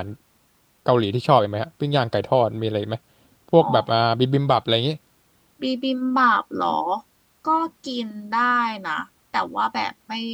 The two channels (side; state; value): both; identical; correlation 1.00